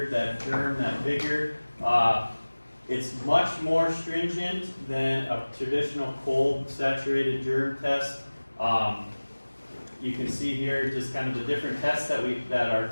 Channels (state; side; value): inverted; both; correlation -1.00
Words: that germ, that vigor. It's much more stringent than a traditional cold saturated germ test. You can see here just kind of the different tests that are